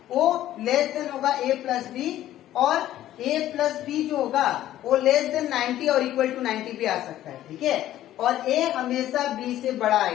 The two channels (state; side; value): quieter; right; 13.2 dB